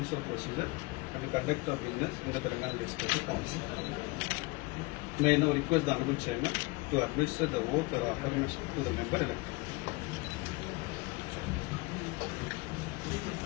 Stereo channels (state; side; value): quieter; right; 24.4 dB